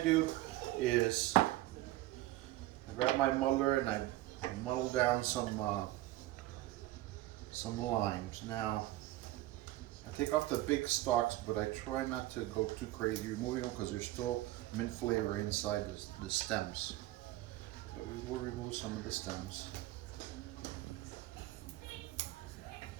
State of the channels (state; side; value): quieter; left; 16.7 dB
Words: is I grab my muddler and I muddle down some limes. Now, I take off the big stalks, but I try not to go too crazy removing them because there's still mint flavor inside the stems. But we will remove some of the stems.